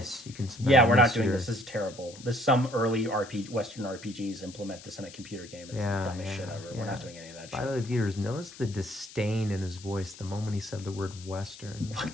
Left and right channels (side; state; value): left; noise; hiss, 17 dB below the sound